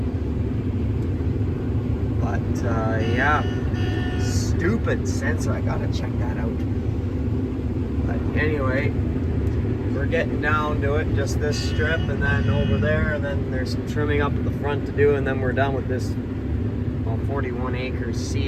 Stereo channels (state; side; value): identical; both; correlation 1.00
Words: but yeah, stupid sensor. I gotta check that out. But anyway, we're getting down to it. Just this strip, and then over there, and then there's some trimming up at the front to do, and then we're done with this 41 acres